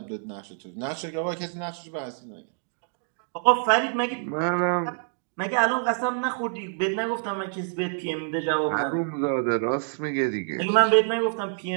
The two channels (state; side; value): silent; left; 60 dB below the other